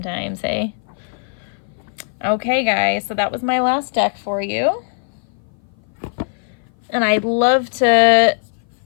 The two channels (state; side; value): silent; right; 58 dB below the other